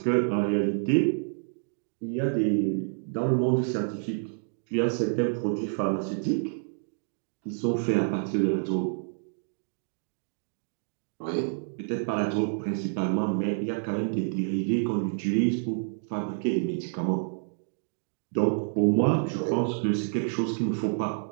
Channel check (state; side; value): silent; left; digital silence